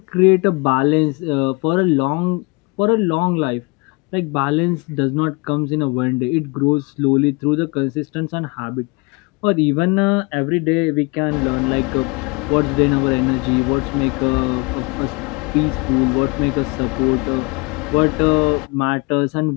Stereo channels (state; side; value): quieter; right; 28.7 dB